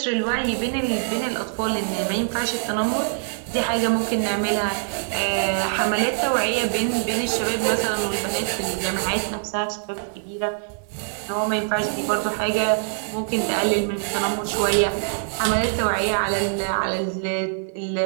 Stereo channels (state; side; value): silent; left; digital silence